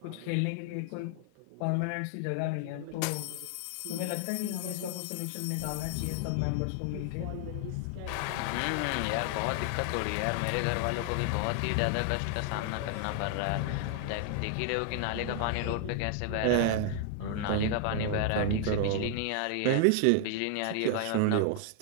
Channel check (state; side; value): different; both; correlation 0.00